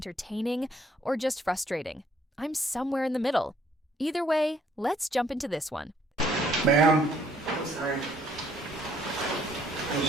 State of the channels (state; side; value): normal; both; correlation 0.65